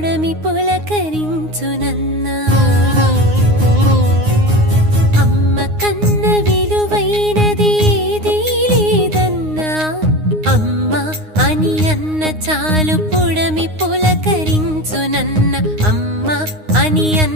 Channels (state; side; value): late; left; 9.6 ms